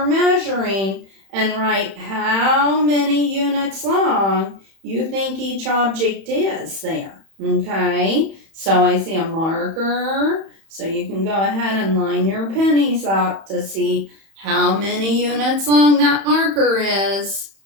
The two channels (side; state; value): left; late; 31 ms